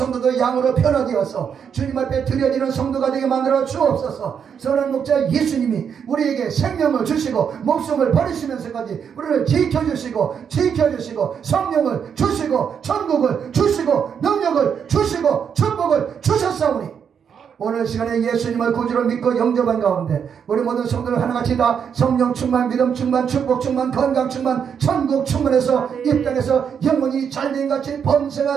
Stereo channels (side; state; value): left; quieter; 7.4 dB